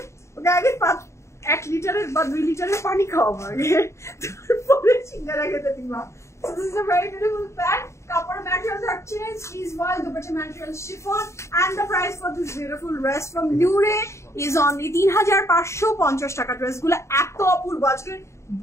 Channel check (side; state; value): right; late; 0.14 ms